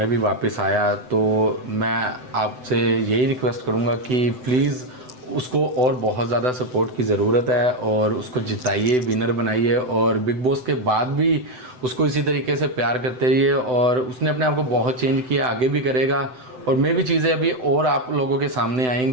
भी वापस आया, तो मैं आपसे यही रिक्वेस्ट करूँगा कि प्लीज़ उसको और बहुत ज़्यादा सपोर्ट की ज़रूरत है, और उसको जिताइए, विनर बनाइए, और बिग बॉस के बाद भी उसको इसी तरीके से प्यार करते रहिए। और उसने अपने आप को बहुत चेंज किया, आगे भी करेगा, और मे भी चीज़ें अभी और आप लोगों के सामने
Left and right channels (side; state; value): left; late; 7.9 ms